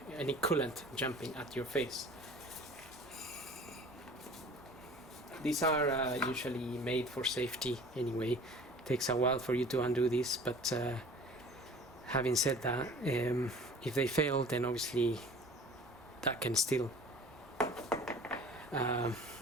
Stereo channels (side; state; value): both; normal; correlation 0.45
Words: any coolant jumping at your face. These are usually made for safety anyway. It takes a while for you to undo this, but having said that, if they fail, then obviously that can still